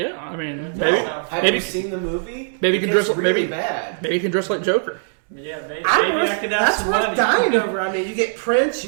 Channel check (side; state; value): left; silent; digital silence